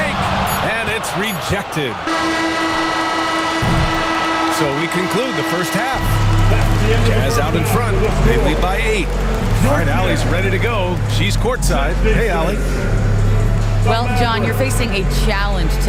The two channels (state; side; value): identical; both; correlation 1.00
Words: And it's rejected. So we conclude the first half. Jazz out in front. They lead by 8. All right, Allie's ready to go. She's courtside. Hey, Allie. Well, John, you're facing a challenge